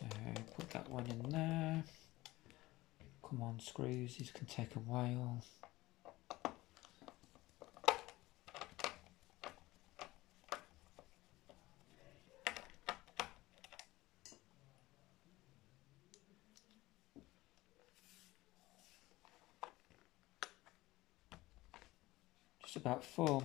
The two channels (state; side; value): quieter; right; 18.8 dB